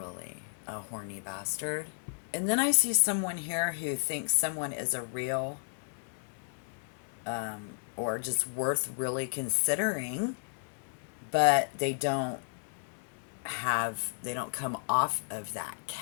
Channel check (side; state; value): right; silent; digital silence